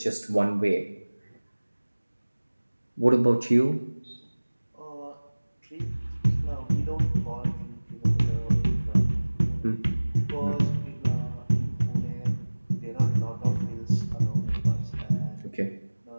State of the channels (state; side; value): inverted; both; correlation -1.00